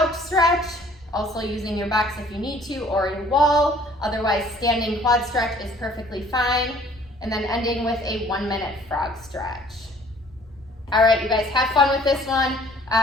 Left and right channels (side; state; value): both; normal; correlation 0.56